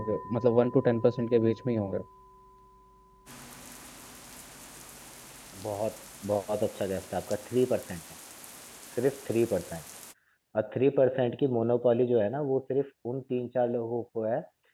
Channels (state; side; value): identical; both; correlation 1.00